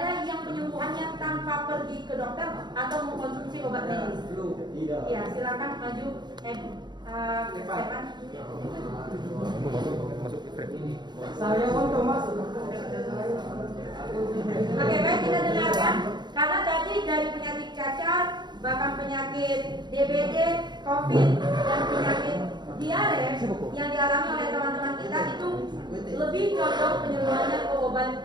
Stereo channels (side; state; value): left; late; 0.21 ms